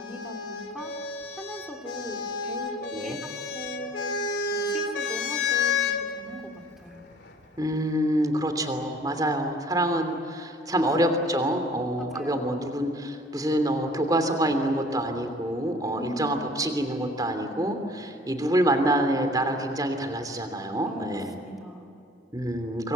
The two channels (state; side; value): normal; both; correlation 0.51